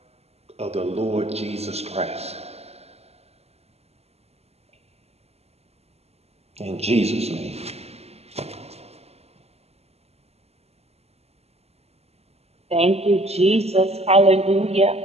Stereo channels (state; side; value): late; left; 0.30 ms